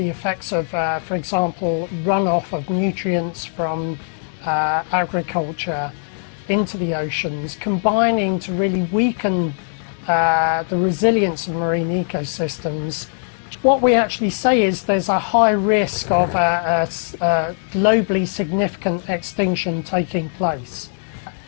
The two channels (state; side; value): silent; right; 65 dB below the other